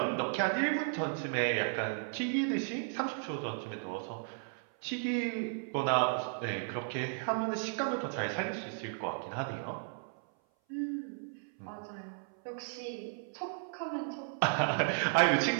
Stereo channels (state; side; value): silent; left; 55 dB below the other